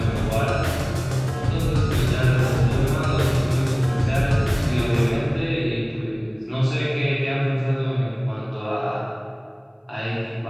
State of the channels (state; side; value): identical; both; correlation 1.00